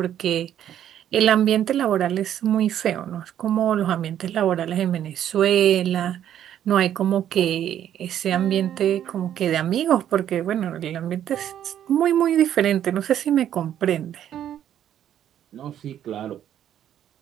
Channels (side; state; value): left; quieter; 10.6 dB